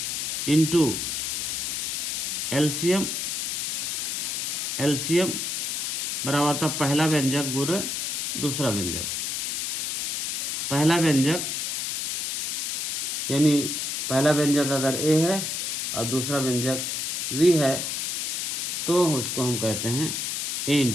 इंटू LCM, LCM बराबर था पहला व्यंजक गुणे दूसरा व्यंजक। पहला व्यंजक यानी पहला व्यंजक अगर A है और दूसरा व्यंजक V है तो उसको हम कहते हैं A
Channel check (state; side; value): noise; left; hiss, 1 dB below the sound